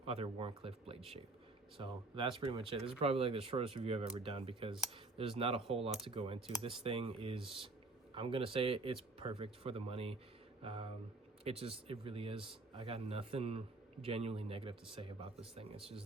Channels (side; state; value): left; quieter; 3.3 dB